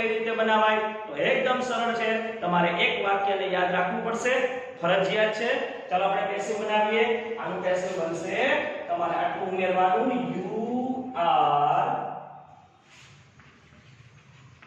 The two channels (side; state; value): both; identical; correlation 1.00